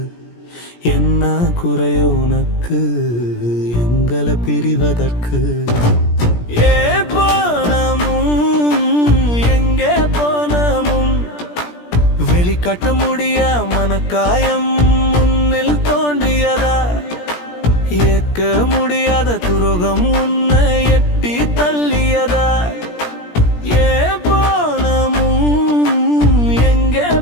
என்ன குறைய உனக்கு எங்களை பிரிவதற்கு ஏ போனமும் எங்கே போனமும் வெளிக்காட்ட முடிய மனக்காயம் முன்னில் தோன்றியதா ஏற்க முடியாத துரோகம் உன்னை எட்டி தள்ளியதா ஏ போனமும் எங்கே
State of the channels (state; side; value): late; right; 17 ms